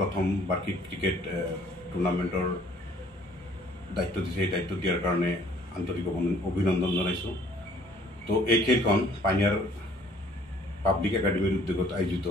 বাৰ্ষিক ক্ৰিকেট টুৰ্ণামেণ্টৰ দায়িত্ব দিছে সেই দায়িত্ব দিয়াৰ কাৰণে আন্তৰিক অভিনন্দন জনাইছোঁ। তো এই খেলখন পাইনিয়াৰ পাব্লিক একাডেমিৰ উদ্যোগত আয়োজিত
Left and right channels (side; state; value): both; normal; correlation 0.58